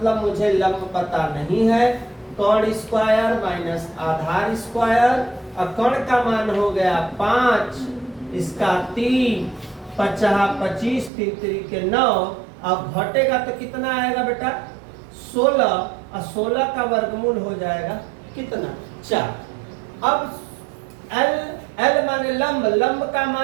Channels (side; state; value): left; drops out; at 11.1 s